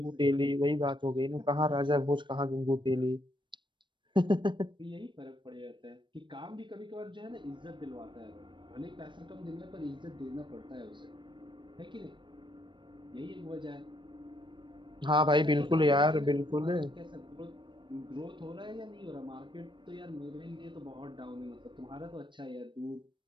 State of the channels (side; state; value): left; late; 0.23 ms